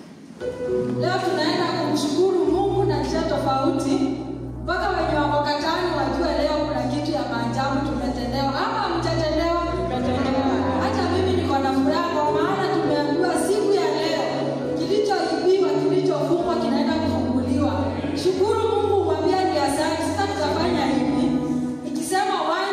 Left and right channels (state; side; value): identical; both; correlation 1.00